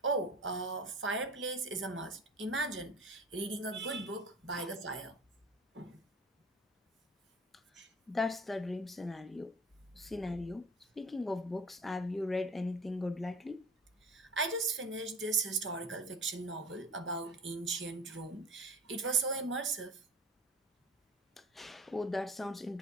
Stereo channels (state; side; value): normal; both; correlation 0.41